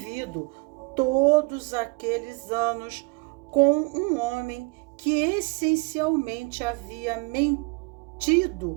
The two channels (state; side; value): quieter; left; 30.9 dB